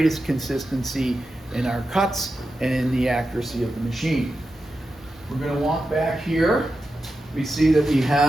consistency in our cuts and in the accuracy of the machine. We're going to walk back here. We see that we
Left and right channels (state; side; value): normal; both; correlation 0.90